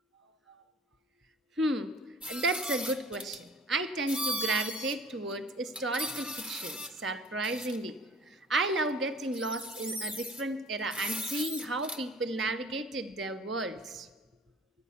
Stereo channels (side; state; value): both; normal; correlation 0.48